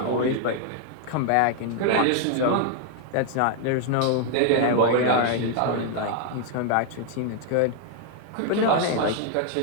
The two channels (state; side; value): different; both; correlation 0.00